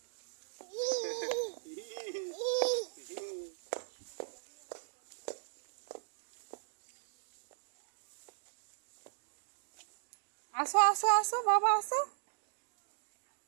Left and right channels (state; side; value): silent; left; digital silence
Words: আসো আসো আসো বাবা আসো।